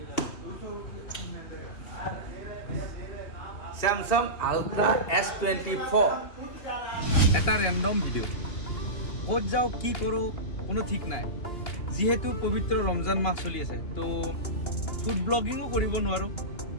স্যামসাং আল্ট্ৰা S24 এটা ৰেণ্ডম ভিডিঅ' ক'ত যাওঁ কি কৰোঁ কোনো ঠিক নাই যেহেতু পবিত্ৰ ৰমজান মাহ চলি আছে তো ফুড ব্লগিঙো কৰিব নোৱাৰোঁ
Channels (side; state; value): right; late; 2.8 ms